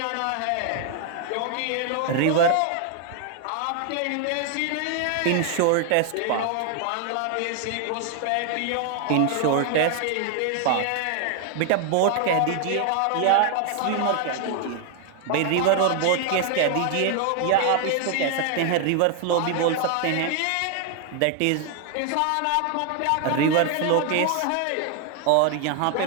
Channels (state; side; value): different; both; correlation 0.00